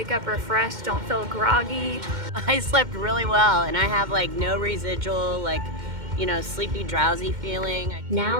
up refreshed, don't feel groggy. I slept really well, and I have like no residual, sleepy, drowsy feeling.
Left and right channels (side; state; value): left; late; 2.1 ms